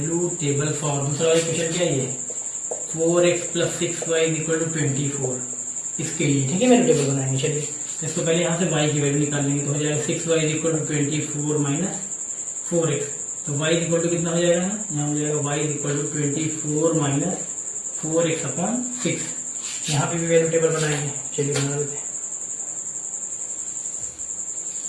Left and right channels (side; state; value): both; identical; correlation 1.00